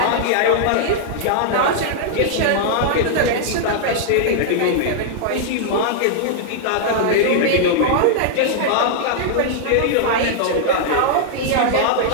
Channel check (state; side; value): different; both; correlation -0.01